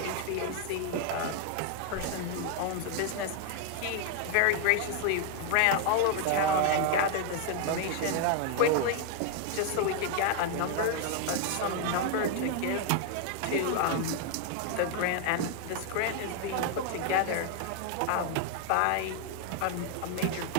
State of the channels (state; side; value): different; both; correlation 0.00